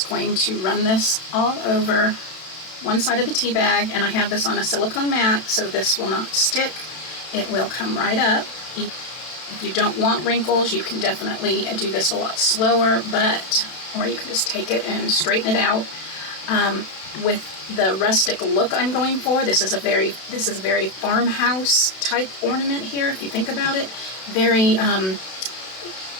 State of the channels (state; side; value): late; right; 32 ms